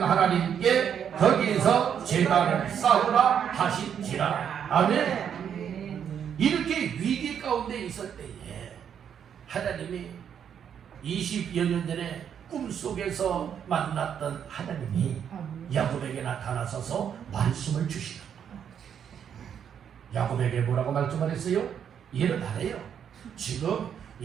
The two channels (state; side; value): quieter; left; 8.3 dB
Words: 하나님께 거기서 제단을 쌓으라 하시니라. 아멘. 이렇게 위기 가운데 있을 때에 하나님이 20여 년 전에 꿈속에서 만났던 하나님이 야곱에게 나타나셔서 말씀을 주시는 거예요. 야곱에게 뭐라고 말씀을 했어요? 일어나래요. 지금